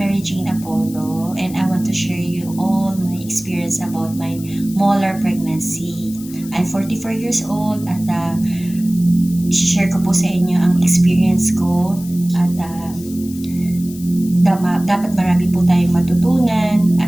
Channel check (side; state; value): left; noise; hiss, 18 dB below the sound